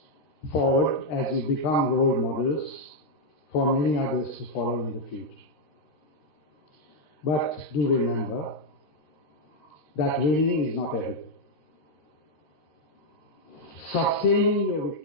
forward as you become role models for many others to follow in the future. But do remember that winning is not everything. Sustaining your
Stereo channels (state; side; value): late; right; 13 ms